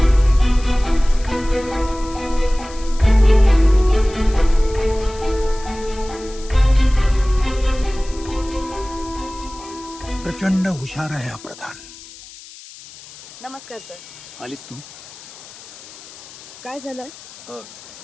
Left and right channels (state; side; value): noise; left; hiss, 18 dB below the sound